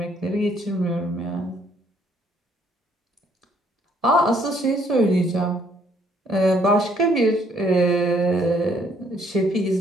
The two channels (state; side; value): normal; both; correlation 0.66